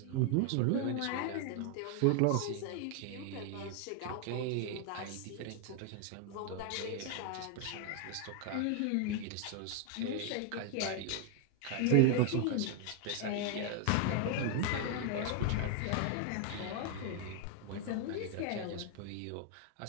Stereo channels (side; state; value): both; different; correlation 0.01